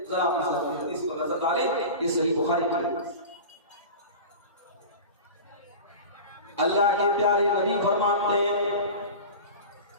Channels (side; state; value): both; inverted; correlation -0.32